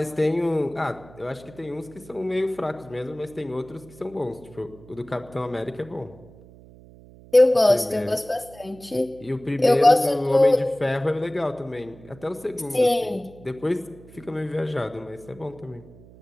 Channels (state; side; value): noise; right; hum, 22 dB below the sound